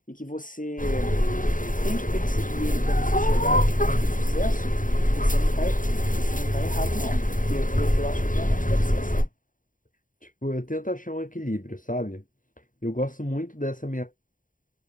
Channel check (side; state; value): right; late; 0.39 ms